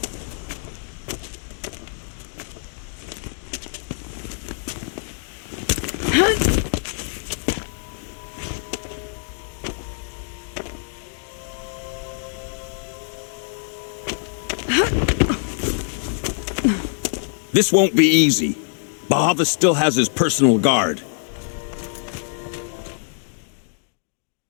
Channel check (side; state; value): right; silent; digital silence